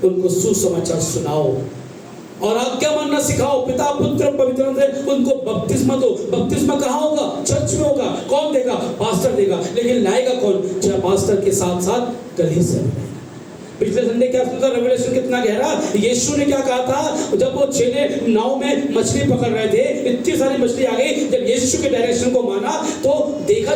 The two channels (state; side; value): identical; both; correlation 1.00